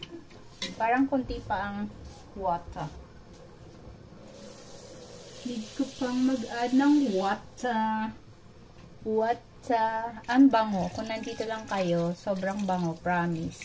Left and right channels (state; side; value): identical; both; correlation 1.00